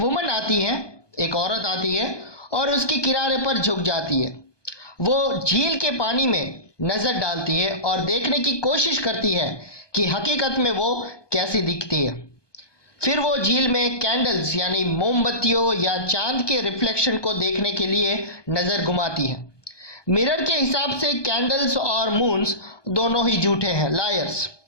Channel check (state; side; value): late; right; 1.2 ms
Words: आती है, एक औरत आती है और उसके किनारे पर झुक जाती है। वो झील के पानी में नज़र डालती है और देखने की कोशिश करती है कि हकीकत में वो कैसी दिखती है। फिर वो झील में कैंडल्स यानी मोमबत्तियों या चांद के रिफ्लेक्शन को देखने के लिए नज़र घुमाती है। मिरर के हिसाब से कैंडल्स और मून्स दोनों ही झूठे हैं, लायर्स।